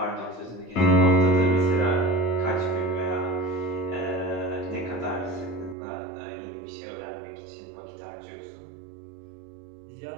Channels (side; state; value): left; drops out; at 5.8 s